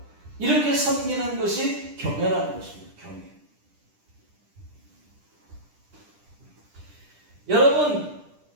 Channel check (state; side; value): late; left; 10 ms